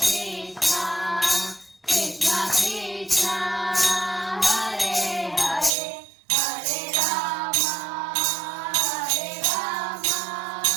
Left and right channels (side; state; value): left; drops out; at 5.7 s